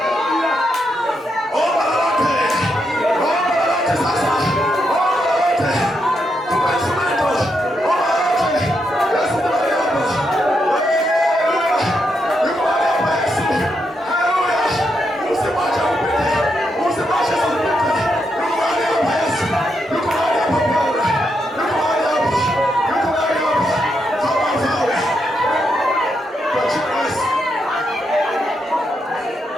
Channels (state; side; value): normal; both; correlation 0.81